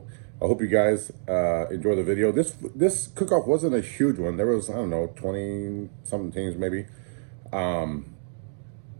I hope you guys enjoy the video. This cook-off wasn't a huge one. There was, I don't know, 20 something teams maybe.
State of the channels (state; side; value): silent; left; digital silence